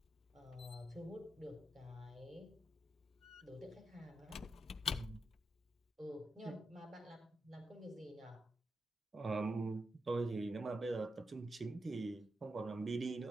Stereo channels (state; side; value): normal; both; correlation 0.87